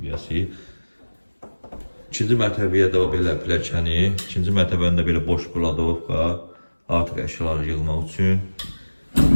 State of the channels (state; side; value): inverted; both; correlation -1.00